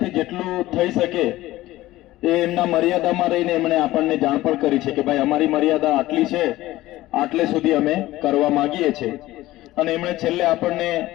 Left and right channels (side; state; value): right; quieter; 16.8 dB